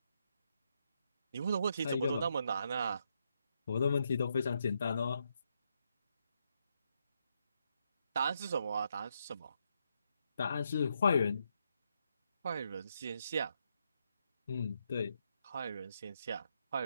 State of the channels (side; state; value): both; inverted; correlation -0.79